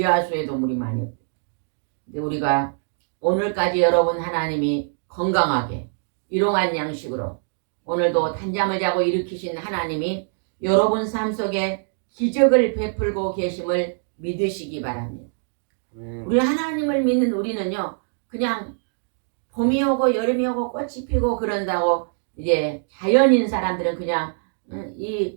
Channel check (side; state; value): left; silent; digital silence